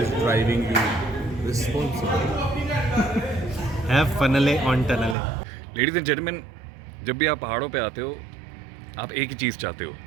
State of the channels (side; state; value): left; drops out; at 5.2 s